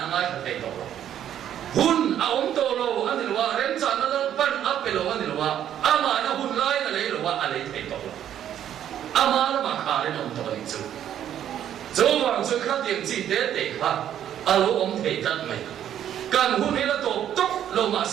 ngay cả thấy đó hun ông to lo anh đi lo rem chán nó pan up lo anh đi lo ama nó hun lại là lấy lo anh lấy thấy đó ama nó mà khá lên ông to đi chứ chỗ hoàng xuân khắc tiền chỉ để khá alo ông thấy thật mày cần hun này là tổ tốc lo mà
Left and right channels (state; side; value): quieter; left; 10.5 dB